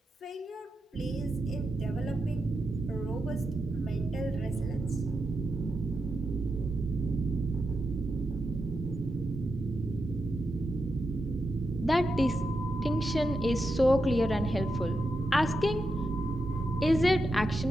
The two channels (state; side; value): normal; both; correlation 0.87